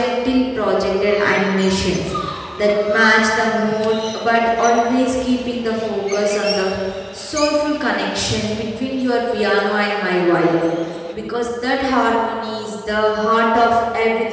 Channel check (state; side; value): identical; both; correlation 1.00